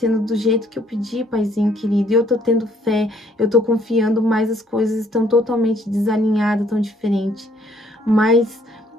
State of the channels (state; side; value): normal; both; correlation 0.65